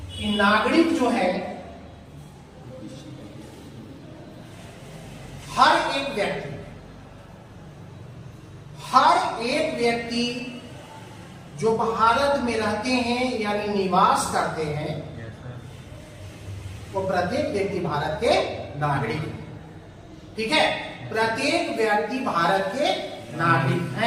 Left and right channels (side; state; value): both; identical; correlation 1.00